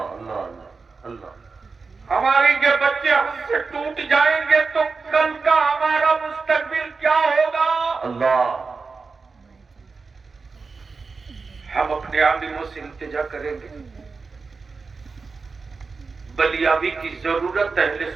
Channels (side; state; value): left; quieter; 4.5 dB